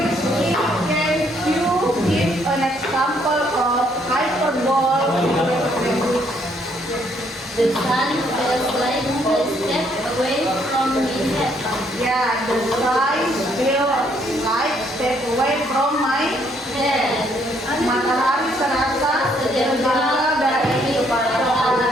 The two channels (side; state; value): both; normal; correlation 0.69